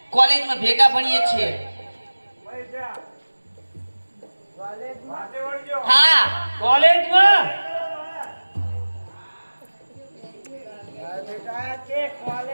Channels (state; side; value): inverted; both; correlation -1.00